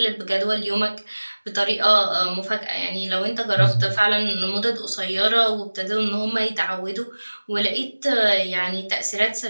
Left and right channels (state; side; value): inverted; both; correlation -1.00